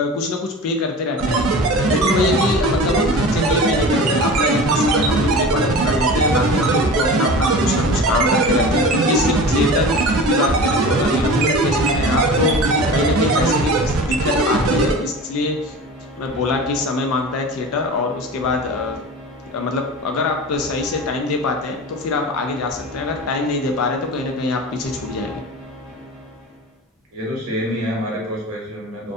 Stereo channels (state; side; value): normal; both; correlation 0.34